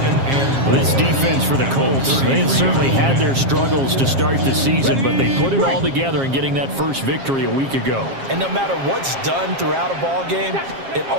This defense for the Colts, they had certainly had their struggles to start the season, but they put it all together in getting that first victory a week ago. And no matter what's done throughout a ball game, it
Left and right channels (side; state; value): left; late; 7.4 ms